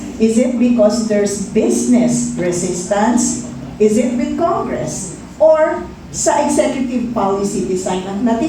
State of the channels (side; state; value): both; identical; correlation 1.00